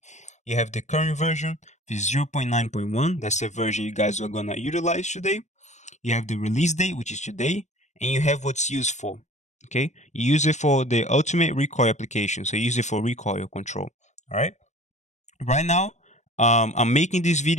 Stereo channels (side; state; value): right; late; 0.34 ms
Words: You have the current version, the 0.9.1. That's the version you guys are gonna utilize today. You have the release date, which is today, and you have what's used for. Okay, you use it for the ultimate recoil application. So you use it for recoil control. All right. Right now, I'm making this